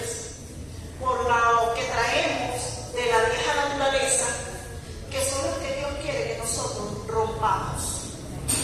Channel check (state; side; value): identical; both; correlation 1.00